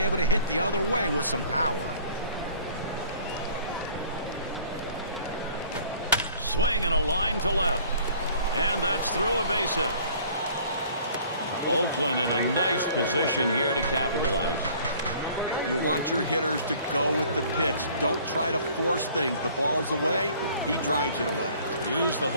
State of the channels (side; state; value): both; inverted; correlation -0.53